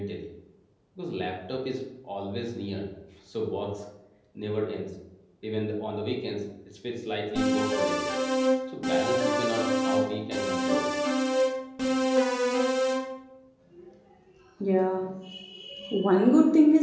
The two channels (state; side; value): identical; both; correlation 1.00